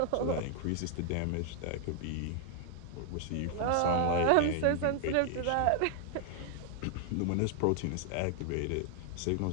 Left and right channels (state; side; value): different; both; correlation 0.00